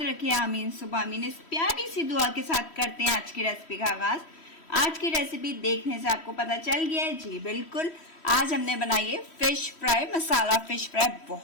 रखे, आमीन सुबह आमीन। इस प्यारी सी दुआ के साथ करते हैं आज की रेसिपी का आगाज। आज की रेसिपी देखने से आपको पता चल गया है, जी बिल्कुल। आज हमने बनाई है फिश फ्राई, मसाला फिश फ्राई।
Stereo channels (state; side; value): late; right; 3.1 ms